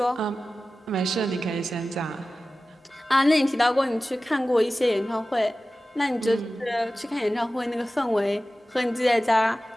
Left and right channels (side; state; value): both; normal; correlation 0.96